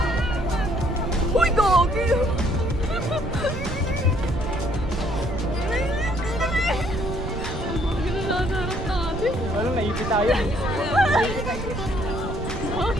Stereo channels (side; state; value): right; noise; rumble, 5 dB below the sound